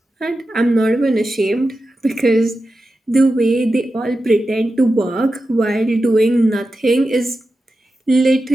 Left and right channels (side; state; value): both; normal; correlation 0.91